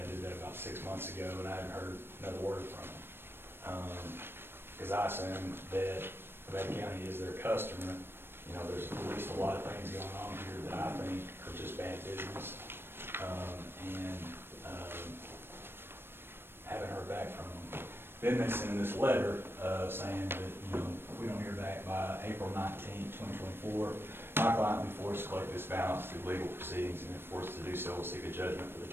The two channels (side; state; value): left; late; 0.11 ms